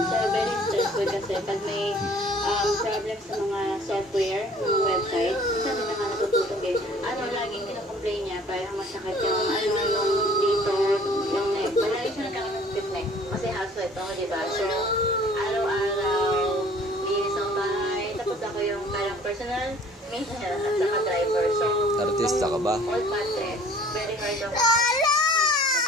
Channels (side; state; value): both; normal; correlation 0.52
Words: So, very stressful kasi pag may problem sa mga software, mga website, minsan din naman natutulog eh. Laging kinocomplain niya, parang masakit yung, yung dito, yung neck. Malagi siya nagkakaroon ng stiff neck. Kasi housewife ako, diba? So, araw-araw, linis ang bahay. Tapos ako yung parang personal maintenance at saka driver. So, artista ka ba? All mattress. Very hard ako.